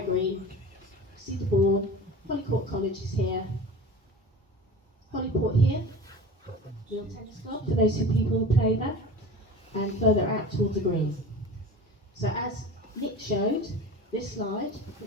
see the board, Holyport College is here, Holyport here, Real Tennis Club for those people who play there, and further out towards the green. So as Nick showed, this slide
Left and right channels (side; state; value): both; normal; correlation 0.35